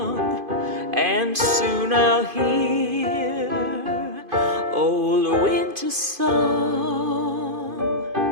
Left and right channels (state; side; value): late; left; 2.5 ms